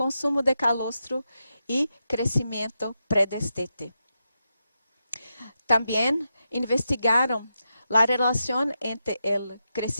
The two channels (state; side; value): inverted; both; correlation -0.87